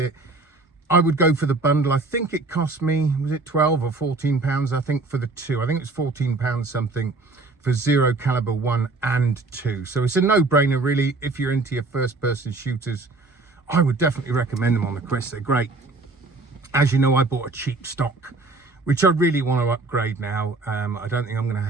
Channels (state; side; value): quieter; left; 3.5 dB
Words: I would go for the bundle. I think it cost me, was it 12 or 14 pounds? I think for the two, I think it's 14 pounds something for Zero Caliber 1 and 2. So it's a no-brainer, really. If you're into your first-person shooters, I would definitely recommend them on the Quest. They're great. As you know, I bought a cheap stock, which I really want to upgrade now. I don't think I'm going to